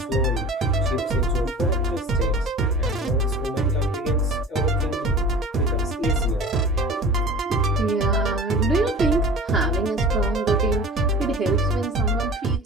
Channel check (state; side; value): normal; both; correlation 0.40